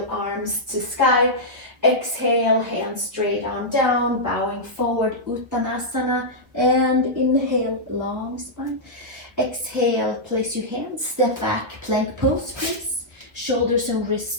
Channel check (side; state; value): left; late; 1.2 ms